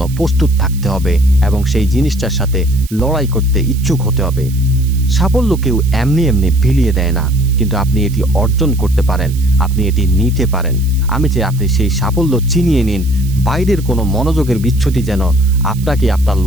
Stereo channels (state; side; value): noise; right; hiss, 19 dB below the sound